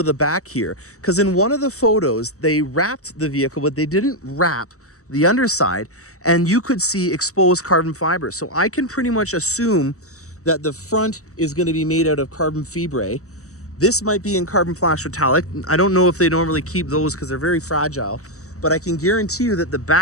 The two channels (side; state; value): right; late; 0.65 ms